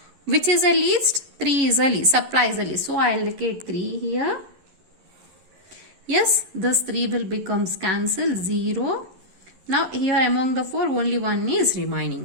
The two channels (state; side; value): late; left; 11 ms